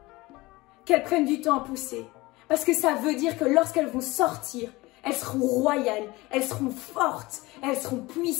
qu'elles prennent du temps à pousser, parce que ça veut dire que lorsqu'elles vont sortir, elles seront royales, elles seront fortes, elles seront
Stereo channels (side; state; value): right; quieter; 21.2 dB